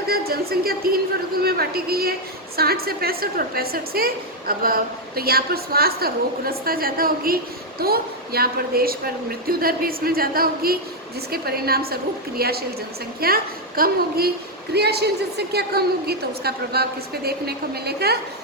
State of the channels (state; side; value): normal; both; correlation 0.02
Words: जनसंख्या 3 वर्गों में बांटी गई है, 60 से 65 और 65 से अब। तो यहाँ पर स्वास्थ्य और रोगग्रस्तता ज़्यादा होगी, तो यहाँ पर देश पर मृत्यु दर भी इसमें ज़्यादा होगी, जिसके परिणाम स्वरूप क्रियाशील जनसंख्या कम होगी। क्रियाशील जनसंख्या कम होगी तो उसका प्रभाव किस पे देखने को मिलेगा,